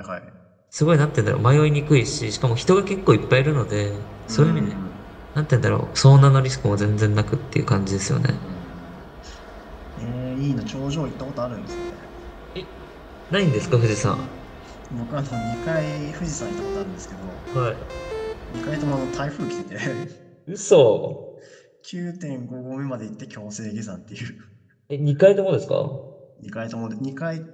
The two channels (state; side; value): identical; both; correlation 1.00